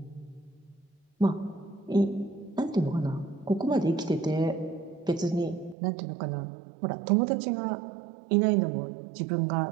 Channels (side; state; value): left; drops out; at 5.8 s